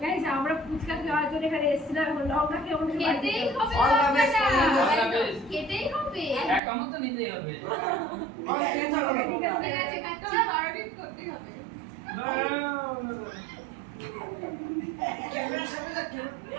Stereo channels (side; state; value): left; drops out; at 6.6 s